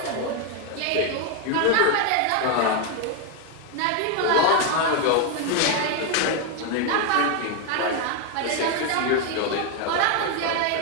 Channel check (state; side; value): different; both; correlation 0.01